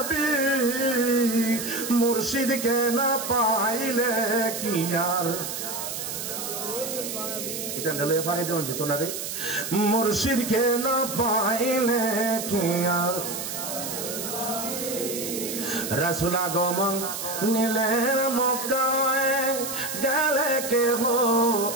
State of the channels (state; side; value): noise; right; hiss, 6 dB below the sound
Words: মুর্শিদকে না পাইলে কি আর। মুর্শিদকে না পাইলে কি আর। রাসূল আগমন নিলেন মক্কায়, গেলে কেহ